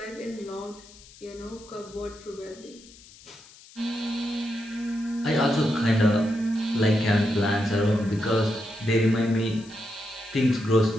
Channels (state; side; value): noise; left; hiss, 22 dB below the sound